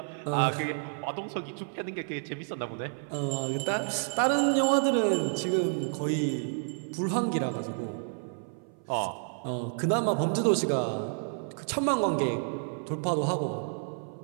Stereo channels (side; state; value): left; silent; 58 dB below the other